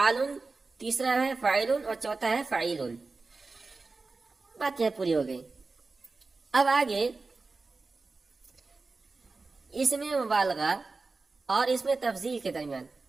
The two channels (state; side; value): quieter; left; 3.8 dB